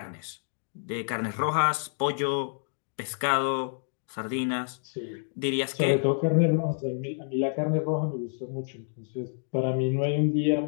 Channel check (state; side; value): silent; right; digital silence